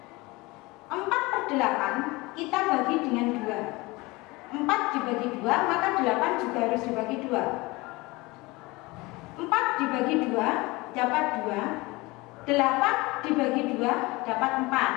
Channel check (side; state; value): right; quieter; 22.9 dB